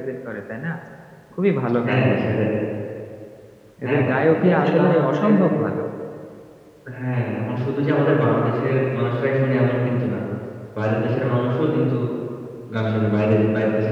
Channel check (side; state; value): both; identical; correlation 1.00